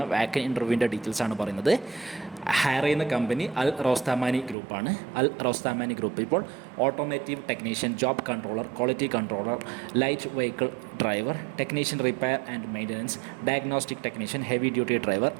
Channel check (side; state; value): left; drops out; at 4.5 s